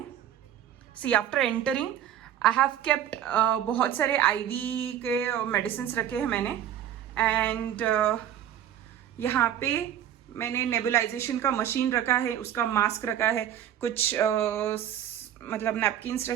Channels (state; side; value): quieter; left; 10.6 dB